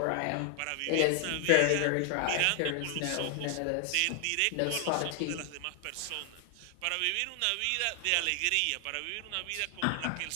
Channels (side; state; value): both; different; correlation 0.00